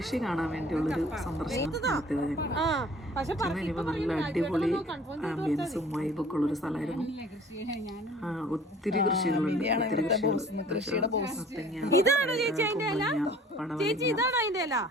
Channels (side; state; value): both; normal; correlation 0.50